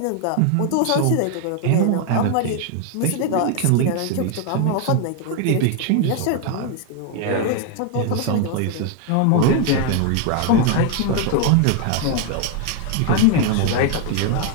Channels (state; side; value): different; both; correlation 0.01